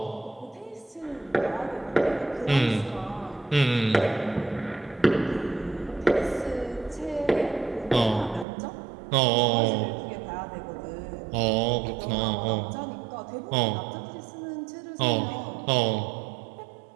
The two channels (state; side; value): drops out; left; at 8.5 s